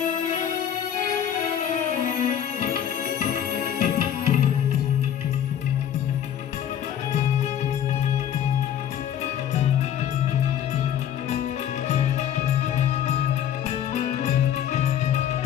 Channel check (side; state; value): right; quieter; 9.8 dB